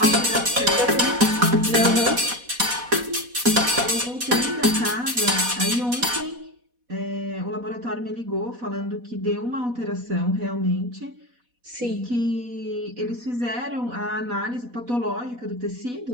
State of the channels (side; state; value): left; late; 4.1 ms